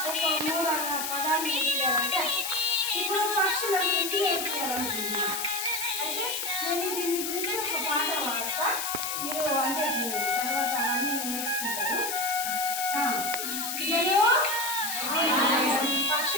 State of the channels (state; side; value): noise; left; hiss, 3 dB below the sound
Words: 3 పదాలు నేర్పియాలంటే ఇప్పుడు పక్షుల గురించి నేర్పియాలనుకుంటున్నా. అయితే నేను దీని గురించి ఒక పాట పాడతా, మీరు అంటే తర్వాత అవన్నీ నేర్చుకుంటారు.